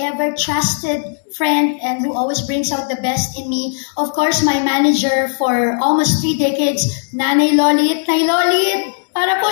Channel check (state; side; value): silent; right; digital silence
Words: ever-trusted friend and who always brings out the best in me. Of course, my manager for almost 3 decades, Nanay Lolit. Nay Lolit, para po